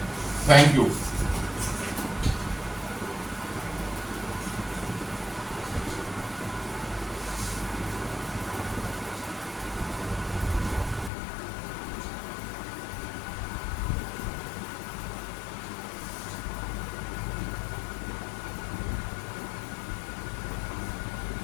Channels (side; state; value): right; drops out; at 11.1 s